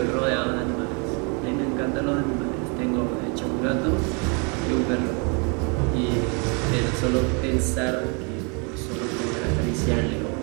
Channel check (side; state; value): left; quieter; 34.5 dB